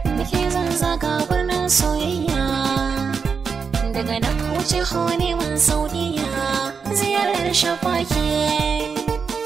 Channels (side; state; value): left; quieter; 5.7 dB